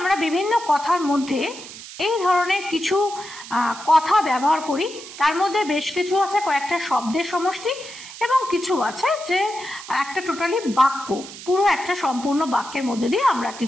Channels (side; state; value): right; noise; hiss, 14 dB below the sound